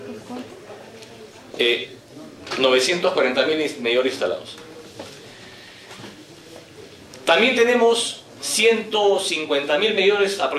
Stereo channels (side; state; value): both; identical; correlation 1.00